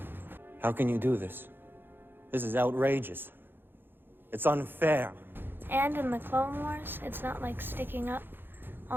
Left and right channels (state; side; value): late; left; 0.10 ms